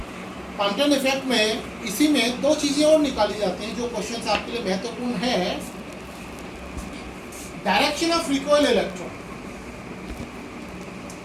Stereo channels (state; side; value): identical; both; correlation 1.00